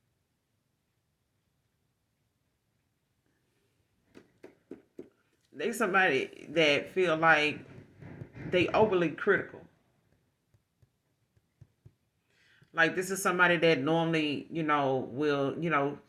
they somebody that feel like they overly critical. Like, this is somebody that normally, will,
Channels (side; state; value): both; identical; correlation 1.00